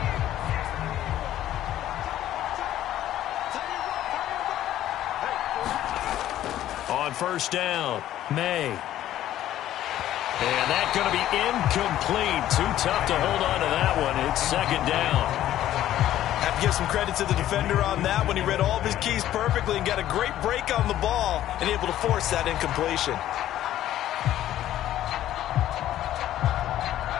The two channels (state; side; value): quieter; right; 12.8 dB